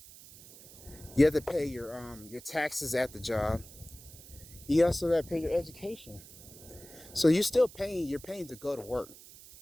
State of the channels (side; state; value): right; noise; hiss, 19 dB below the sound